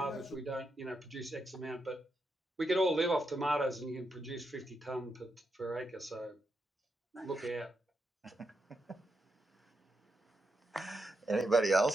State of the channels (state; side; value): normal; both; correlation 0.84